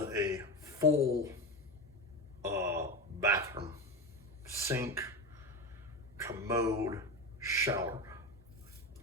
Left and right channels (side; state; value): both; normal; correlation 0.20